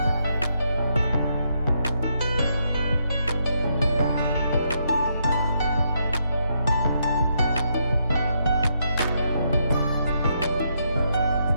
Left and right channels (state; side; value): inverted; both; correlation -0.77